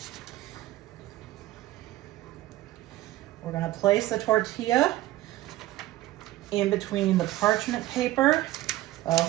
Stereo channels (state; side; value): quieter; left; 15.9 dB